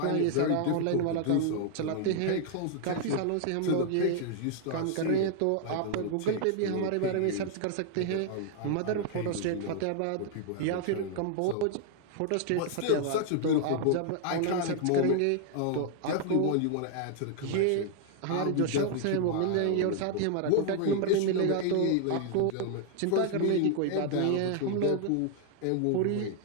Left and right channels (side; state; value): both; different; correlation 0.00